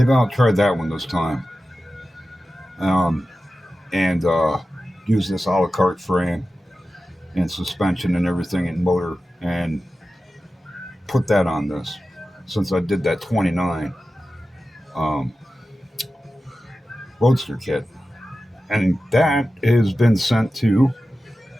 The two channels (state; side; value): normal; both; correlation 0.93